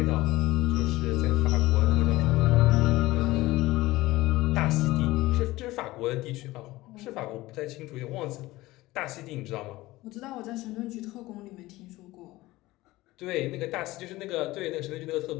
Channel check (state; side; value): quieter; right; 18.7 dB